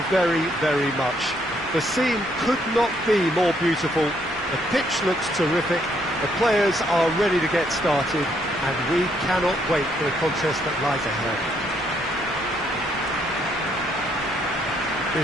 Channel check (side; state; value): both; normal; correlation 0.71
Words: very, very much. The scene could not be more beautiful. The pitch looks terrific. The players are ready to get started, and we cannot wait for the contest that lies ahead.